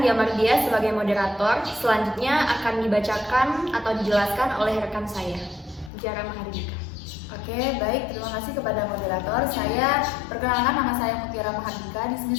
Mardia sebagai moderator. Selanjutnya akan dibacakan atau dijelaskan oleh rekan saya, Jara Mahardika. Oke, baik. Terima kasih kepada moderator. Saya perkenalkan, nama saya Mutiara Mahardika. Di sini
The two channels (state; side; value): drops out; right; at 5.9 s